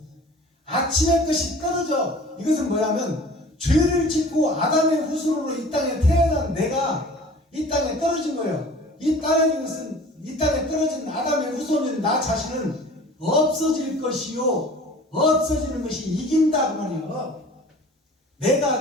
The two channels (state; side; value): normal; both; correlation 0.45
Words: 아침의 것이 떨어져. 이것은 뭐냐면 죄를 짓고 아담의 후손으로 이 땅에 태어난 내가 이 땅에 떨어진 거예요. 이 땅에 떨어진 아담의 후손인 나 자신은 없어질 것이요 없어지는 것이 이긴다 그 말이에요.